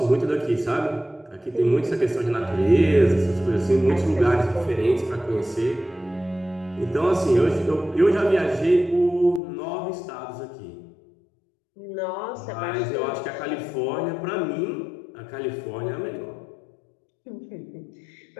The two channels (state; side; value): drops out; right; at 9.4 s